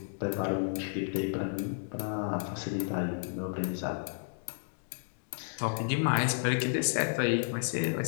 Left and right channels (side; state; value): right; silent; digital silence